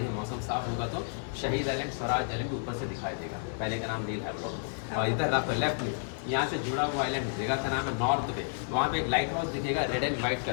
मौसम साफ होगा तो शहीद आइलैंड, स्वराज आइलैंड ऊपर से दिखाई देगा। पहले का नाम नील है ब्लॉक। और इधर लेफ्ट में यहाँ से जुड़ा हुआ आइलैंड है, जगह का नाम है नॉर्थ बे। वहाँ पे एक लाइट हाउस दिखेगा रेड एंड व्हाइट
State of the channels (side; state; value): right; silent; 57 dB below the other